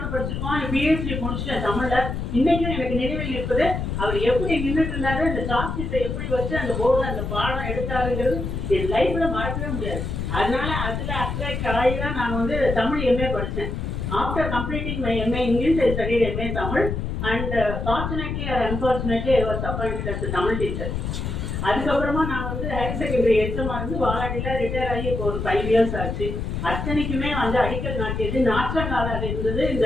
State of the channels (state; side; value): noise; left; rumble, 3 dB below the sound